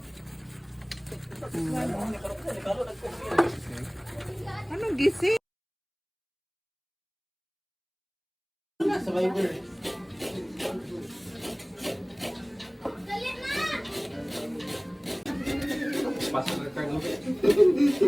Anong gising? Survivor. Pasok ka cargo.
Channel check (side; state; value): both; identical; correlation 1.00